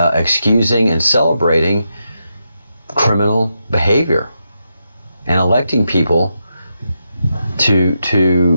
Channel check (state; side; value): inverted; both; correlation -0.85